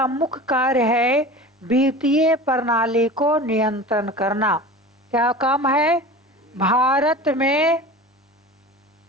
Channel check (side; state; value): both; normal; correlation 0.35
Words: मुख्य कार्य है वित्तीय प्रणाली को नियंत्रण करना। क्या काम है? भारत में